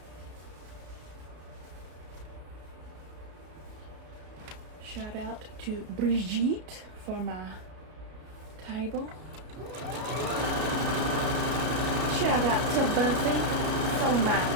Shout out to Brigitte for my table. Shout out to Buffy for my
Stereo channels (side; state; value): left; late; 33 ms